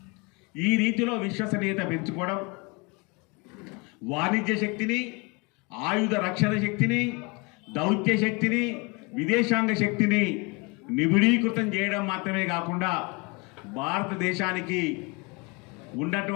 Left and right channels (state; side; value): quieter; right; 28.4 dB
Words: ఈ రీతిలో విశ్వసనీయత పెంచుకోవడం, వాణిజ్య శక్తిని, ఆయుధ రక్షణ శక్తిని, దౌత్య శక్తిని, విదేశాంగ శక్తిని నిబిడీకృతం చేయడం మాత్రమే కాకుండా భారతదేశానికి